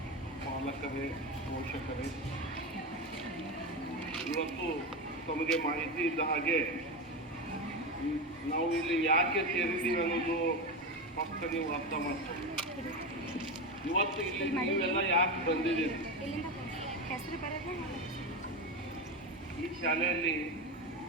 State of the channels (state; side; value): normal; both; correlation 0.17